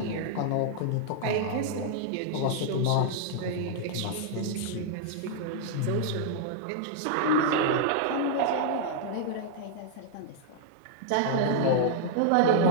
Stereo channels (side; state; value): both; different; correlation -0.01